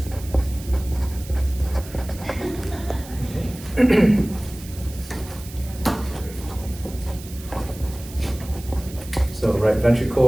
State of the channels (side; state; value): right; noise; hiss, 17 dB below the sound